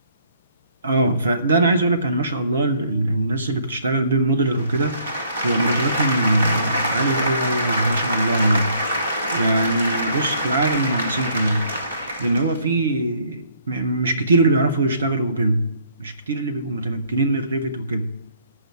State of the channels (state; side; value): inverted; both; correlation -0.63